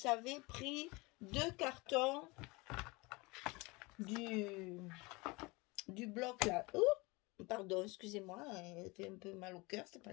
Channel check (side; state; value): right; quieter; 25.0 dB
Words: pris 2 cartons du bloc là. Oh, pardon, excusez-moi, elle fait un peu mal au cœur, c'est